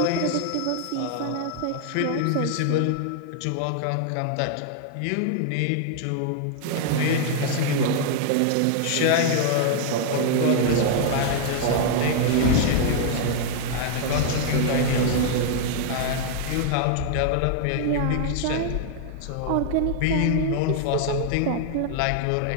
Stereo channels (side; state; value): both; different; correlation -0.01